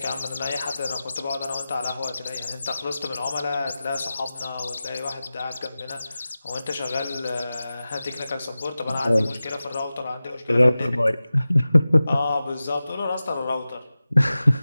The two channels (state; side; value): inverted; both; correlation -0.96